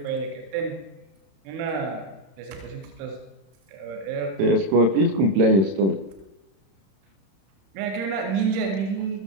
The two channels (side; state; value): left; late; 31 ms